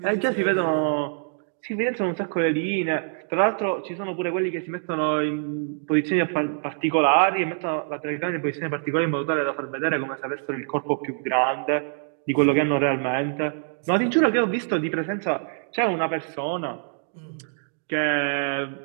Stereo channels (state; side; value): silent; left; digital silence